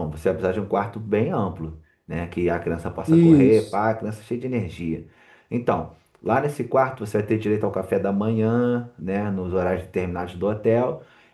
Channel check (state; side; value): identical; both; correlation 1.00